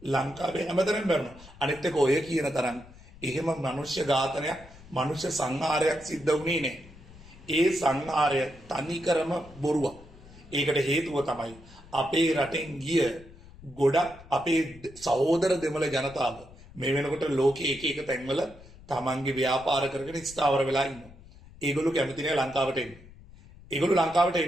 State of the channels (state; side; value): noise; left; rumble, 21 dB below the sound